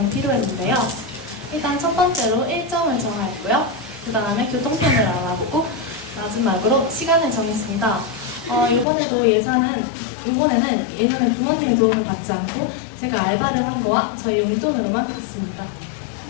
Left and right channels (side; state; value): right; drops out; at 8.8 s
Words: 필요했는데요. 일단 첫 번째로 일정을 정하였고요. 그 다음에 교통편을 알아보고 마지막으로 시간을 정했습니다. 이번에는 예전에 부모님의 도움을 받지 않고 제가 알바를 한 거와 저희 용돈으로만 갔습니다.